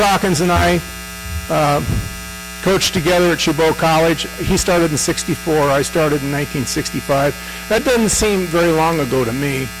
and I coached together at Chabot College. He started in '64. I started in 1965. That doesn't seem very long ago to me.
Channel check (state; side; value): identical; both; correlation 1.00